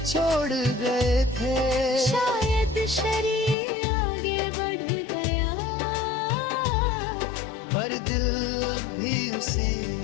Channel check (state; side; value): drops out; right; at 3.6 s